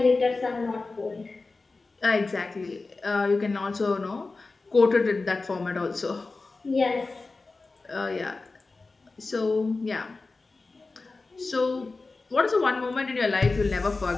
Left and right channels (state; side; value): quieter; right; 3.7 dB